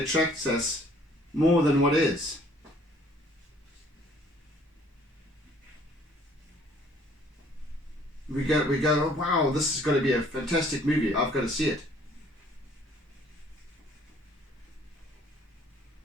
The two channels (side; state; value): both; normal; correlation 0.59